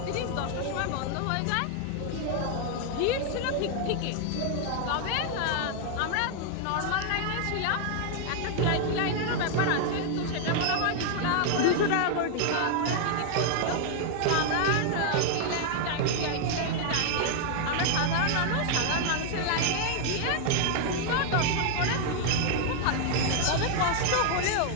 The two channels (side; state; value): both; different; correlation 0.00